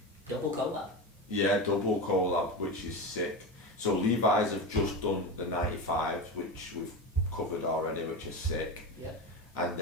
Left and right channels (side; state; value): both; normal; correlation 0.21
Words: Double collab. Yeah, double collab, which is sick. So Levi's have just done the 95s, which we've covered already, which is sick. Yeah. And